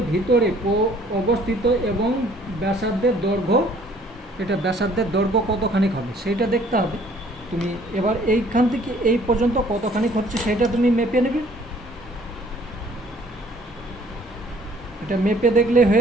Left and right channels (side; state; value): both; normal; correlation 0.58